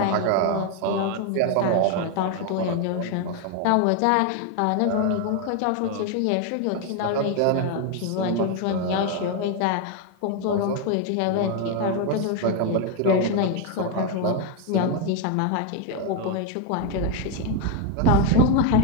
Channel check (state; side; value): different; both; correlation 0.01